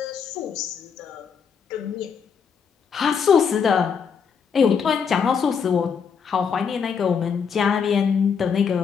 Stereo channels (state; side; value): quieter; right; 6.5 dB